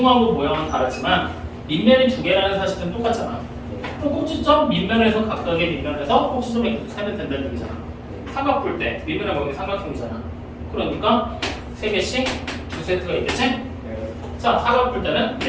모양은 다르지만 밑면이 2개라는 사실은 똑같잖아. 그럼 꼭지점 밑면에서 각각의 밑면에서 꼭지점의 개수 세면 된다는 얘기잖아. 삼각뿔대 밑면의 모양이 삼각형이잖아. 그러니까 3개씩 2세트가 있겠지? 자, 사각뿔대는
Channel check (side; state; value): both; identical; correlation 1.00